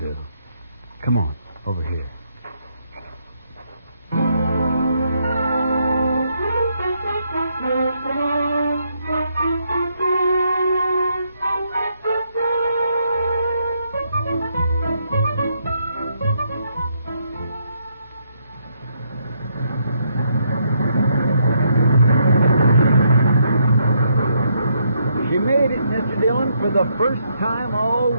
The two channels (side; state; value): both; inverted; correlation -0.75